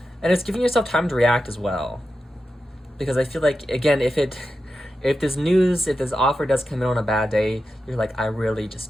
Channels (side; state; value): both; normal; correlation 0.90